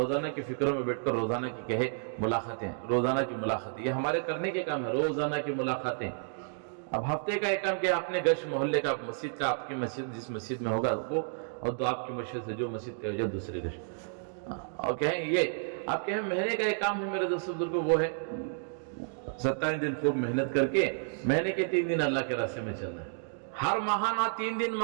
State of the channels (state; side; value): silent; left; digital silence